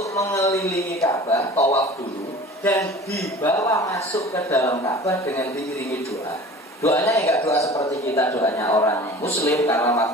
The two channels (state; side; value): normal; both; correlation 0.42